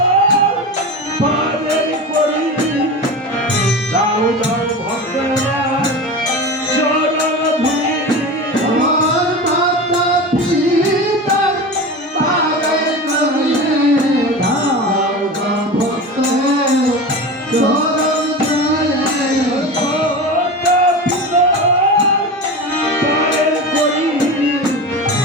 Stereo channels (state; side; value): normal; both; correlation 0.28